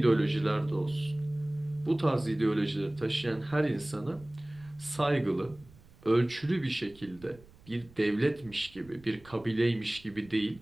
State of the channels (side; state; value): right; noise; rumble, 24 dB below the sound